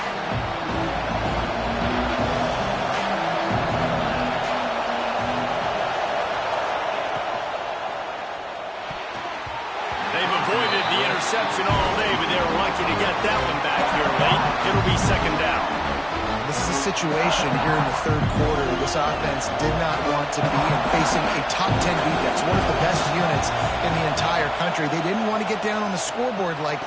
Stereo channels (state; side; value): identical; both; correlation 1.00